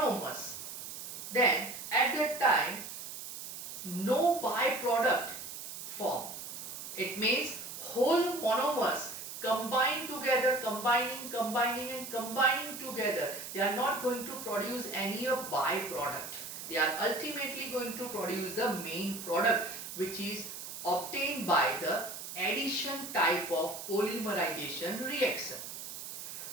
then at that time no byproduct form. It means whole monomers combine together, combining together. They are not going to produce any byproduct. They are ultimately going to produce the main product, which is obtained by the addition type of polymerization reaction.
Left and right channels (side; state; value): right; noise; hiss, 9 dB below the sound